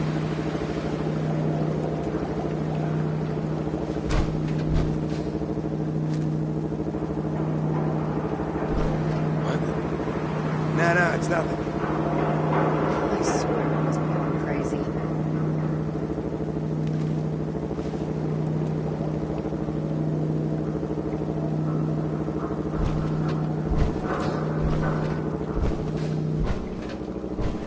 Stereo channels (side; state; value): both; identical; correlation 1.00